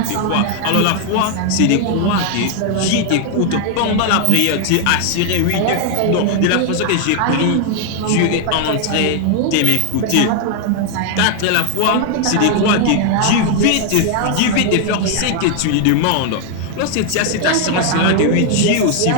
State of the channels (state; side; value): different; both; correlation 0.00